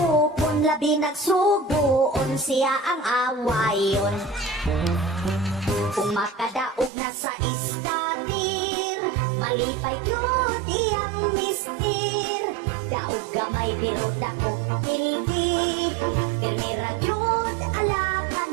labi nagsuguon siya ang awayon. Kung makadaog na sa istatir malipay yun iyang mister daog gamay pero dakong pildi pirmira yun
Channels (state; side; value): drops out; left; at 6.9 s